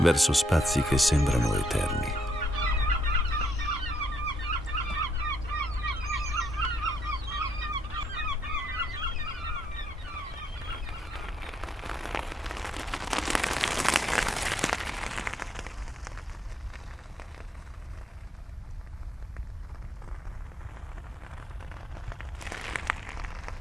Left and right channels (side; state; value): both; normal; correlation 0.73